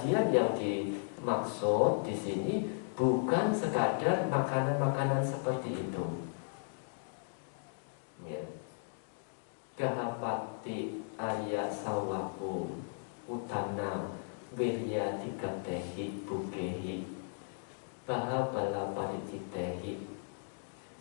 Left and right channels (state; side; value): silent; right; digital silence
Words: yang dimaksud di sini bukan sekadar makanan-makanan seperti itu. Ya. Gahapati Arya Sawaku Utana Wirya Tigatehi Bukehi Bahabala Paricitehi